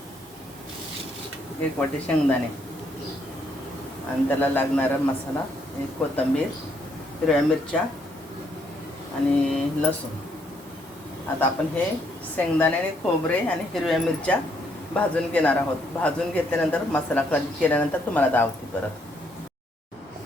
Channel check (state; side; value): normal; both; correlation 0.71